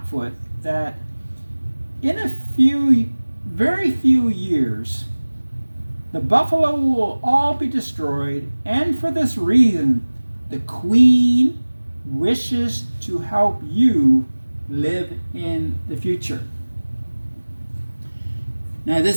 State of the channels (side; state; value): both; inverted; correlation -1.00